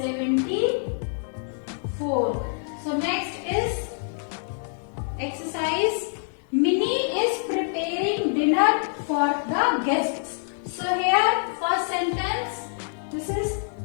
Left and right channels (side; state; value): right; silent; 61 dB below the other